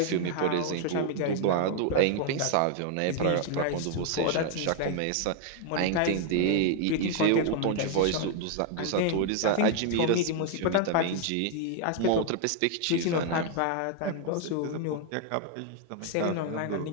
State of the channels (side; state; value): both; different; correlation 0.00